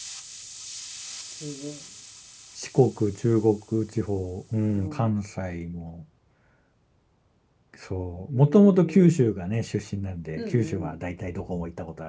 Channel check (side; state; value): both; identical; correlation 1.00